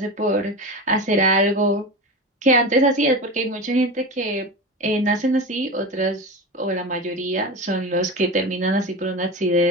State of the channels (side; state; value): both; normal; correlation 0.25